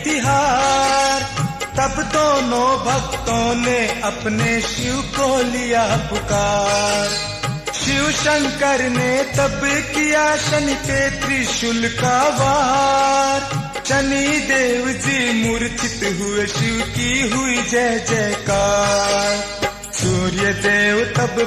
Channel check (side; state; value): both; identical; correlation 1.00